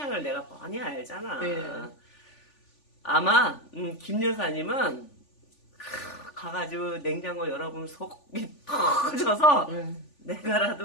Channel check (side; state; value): right; late; 3.4 ms